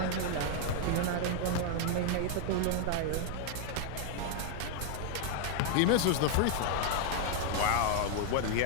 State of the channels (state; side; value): different; both; correlation 0.00